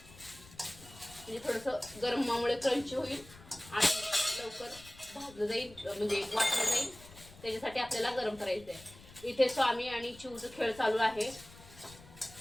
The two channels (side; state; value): left; noise; rumble, 20 dB below the sound